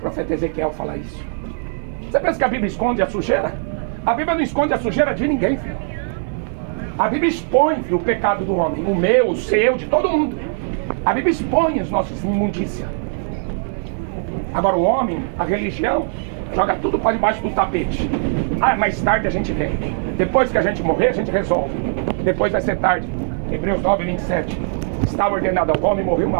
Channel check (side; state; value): left; silent; digital silence